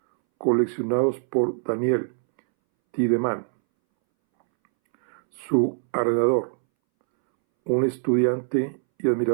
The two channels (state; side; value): silent; left; 63 dB below the other